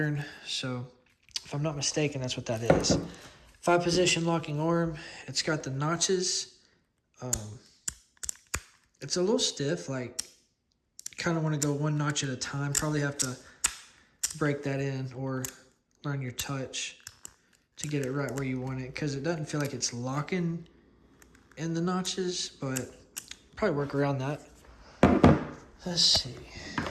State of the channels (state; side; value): identical; both; correlation 1.00